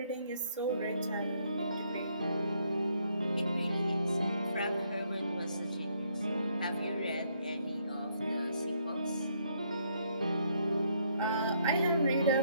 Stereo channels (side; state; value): both; inverted; correlation -0.71